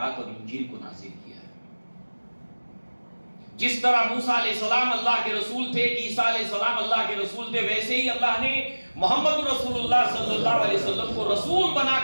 اور انجیل کو نازل کیا ہے. جس طرح موسیٰ علیہ السلام اللہ کے رسول تھے، عیسیٰ علیہ السلام اللہ کے رسول تھے، ویسے ہی اللہ نے محمد رسول اللہ صلی اللہ علیہ وسلم کو رسول بنا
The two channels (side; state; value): both; inverted; correlation -1.00